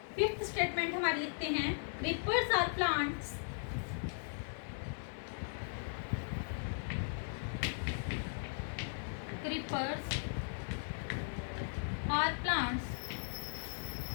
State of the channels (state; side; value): silent; right; digital silence